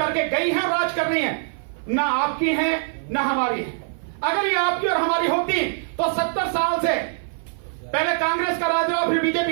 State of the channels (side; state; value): left; silent; 55 dB below the other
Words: गई हैं, राज कर रही हैं, ना आपकी हैं ना हमारी है। अगर ये आपकी और हमारी होती तो 70 साल से पहले कांग्रेस का राज रहा, फिर